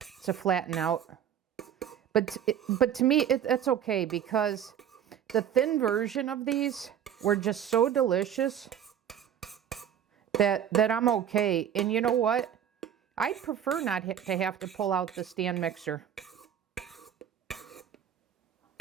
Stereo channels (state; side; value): quieter; left; 9.3 dB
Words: flatten out. But to me, that's okay, because the thin version of these were just so delicious that I'm okay. And you know what? I prefer not to have to pull out the stand mixer.